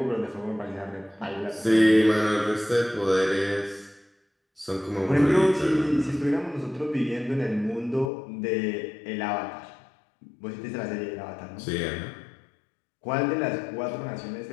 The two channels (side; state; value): right; drops out; at 8.1 s